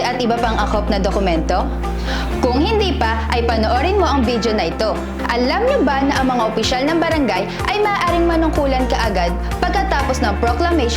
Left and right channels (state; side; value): identical; both; correlation 1.00